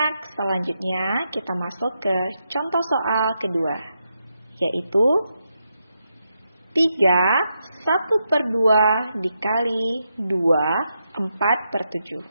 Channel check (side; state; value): both; inverted; correlation -0.84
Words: selanjutnya kita masuk ke contoh soal kedua, yaitu 3/1/2 dikali 2 4/7.